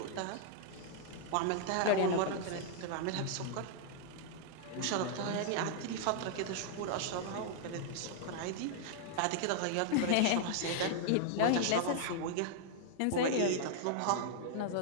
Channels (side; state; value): both; different; correlation -0.01